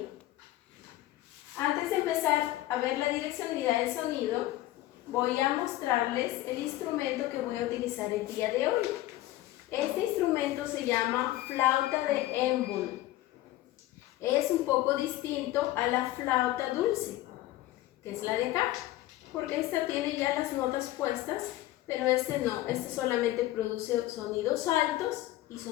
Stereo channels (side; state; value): right; quieter; 15.9 dB